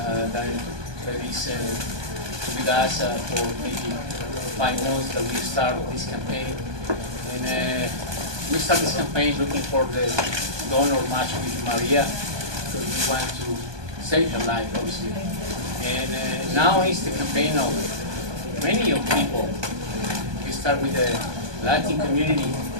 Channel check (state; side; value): late; left; 1.2 ms